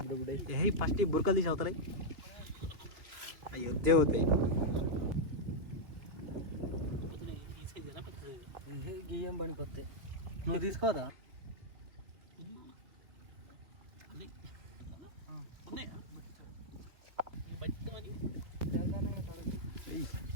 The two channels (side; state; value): left; late; 2.8 ms